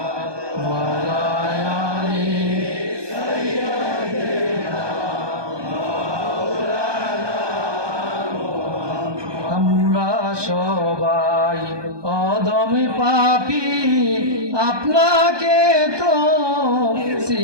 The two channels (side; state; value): left; late; 1.2 ms